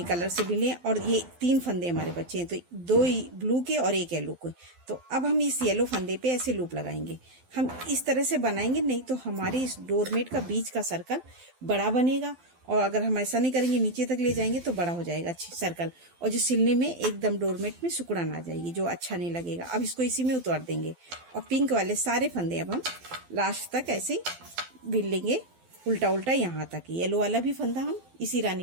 कलर से भी लें, और ये 3 फंदे हमारे बचे हैं, तो 2 ब्लू के और 1 येलो के। तो अब हम इस येलो फंदे पे ऐसे लूप लगाएंगे। हम इस तरह से बनाएंगे, नहीं तो हमारे इस डोरमेट का बीच का सर्कल बड़ा बनेगा, और अगर हम ऐसा नहीं करेंगे नीचे तक ले जाएंगे तो बड़ा हो जाएगा सर्कल, और जो सिलने में एकदम डोरमेट में सिकुड़न आ जाएगी, जो अच्छा नहीं लगेगा। अब इसको इसी में उतार देंगे, और पिंक वाले सारे फंदे अब हम लास्ट तक ऐसे बिन लेंगे, उल्टा उल्टा यहाँ तक। येलो वाला भी फंदा हम इसी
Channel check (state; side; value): late; left; 12 ms